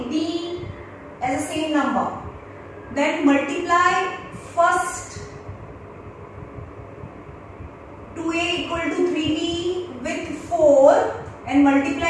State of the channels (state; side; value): identical; both; correlation 1.00